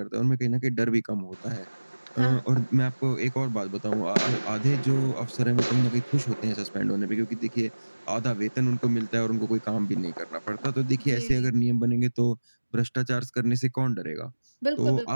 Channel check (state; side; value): inverted; both; correlation -1.00